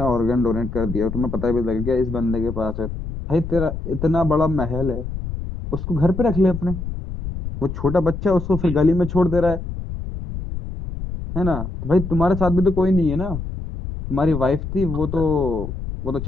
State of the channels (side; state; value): left; noise; rumble, 7 dB below the sound